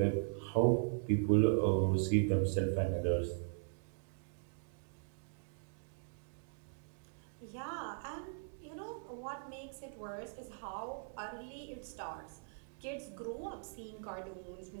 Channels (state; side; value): silent; left; digital silence